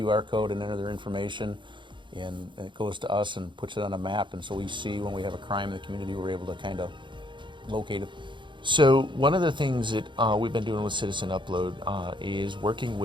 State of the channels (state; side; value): late; left; 0.23 ms